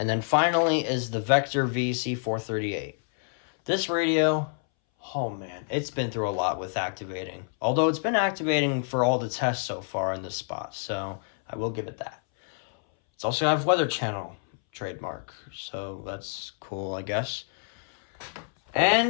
then finally is the Vector VC438. This radio, oh man, it's been through a lot with activating. Although it's been activating for all the tests so far in this spot, so I will give it that. It's also have Weather Channel trademark, so that's cool, I guess.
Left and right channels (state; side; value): silent; right; 60 dB below the other